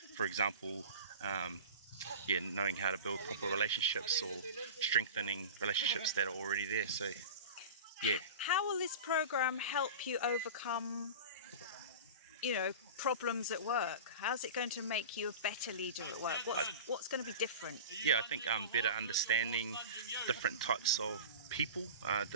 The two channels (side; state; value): both; inverted; correlation -0.33